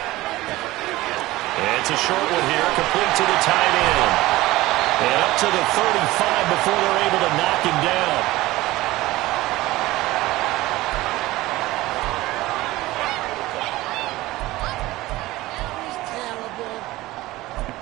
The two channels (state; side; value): quieter; left; 18.2 dB